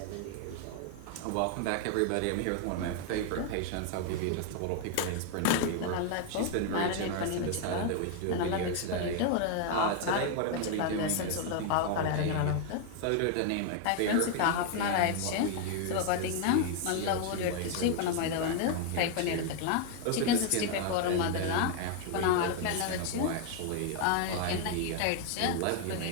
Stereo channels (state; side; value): different; both; correlation 0.00